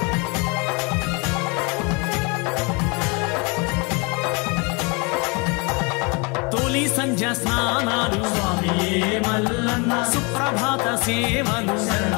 సంధ్య స్నానాలు స్వామియే మల్లన్న సుప్రభాత సేవలు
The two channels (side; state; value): right; quieter; 30.3 dB